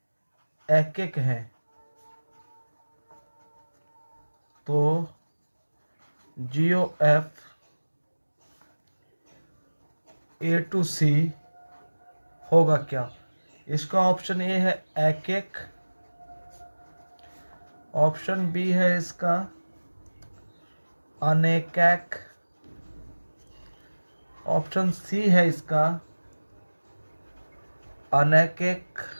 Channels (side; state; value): both; inverted; correlation -1.00